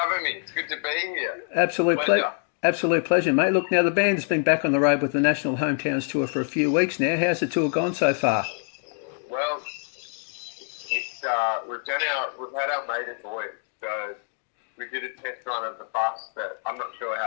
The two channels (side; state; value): right; silent; 61 dB below the other